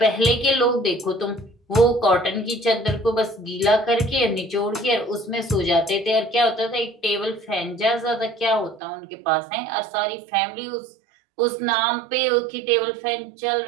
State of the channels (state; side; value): drops out; left; at 8.8 s